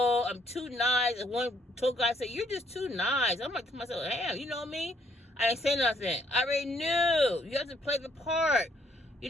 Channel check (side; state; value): both; normal; correlation 0.68